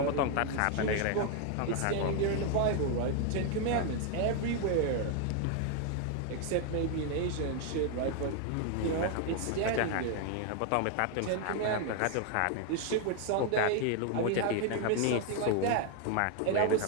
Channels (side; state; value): both; different; correlation 0.00